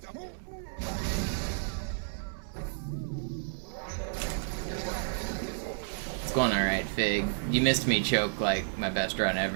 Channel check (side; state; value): left; silent; 57 dB below the other